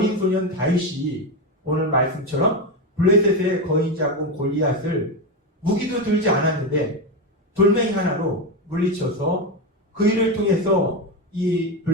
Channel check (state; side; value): normal; both; correlation 0.13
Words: 소년 다윗이 오늘 말씀처럼 블레셋의 거인 장군 골리앗을 무기도 들지 않았는데 돌멩이 하나로 물리쳐서 그 일을 통해서 이